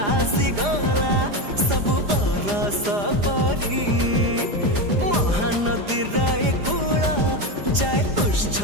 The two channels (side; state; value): left; late; 4.9 ms